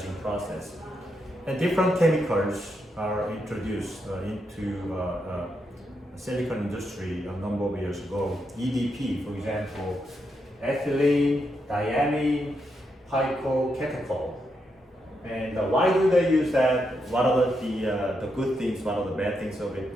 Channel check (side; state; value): both; normal; correlation 0.82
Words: process. And different chemicals are introduced into silicon industry a number of years ago. EDP, for example, ethylene, diamine, picocatechol. And why do they use that? What are the good things? What are the bad things of it?